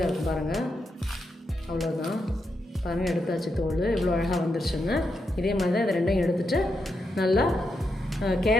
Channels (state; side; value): normal; both; correlation 0.84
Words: இருக்கும் பாருங்கள். அவ்வளோதான் பாருங்கள், எடுத்தாச்சு தோல். இவ்வளோ அழகாக வந்துருச்சுங்க. இதே மாதிரி தான் இதை ரெண்டையும் எடுத்துகிட்டு நல்லா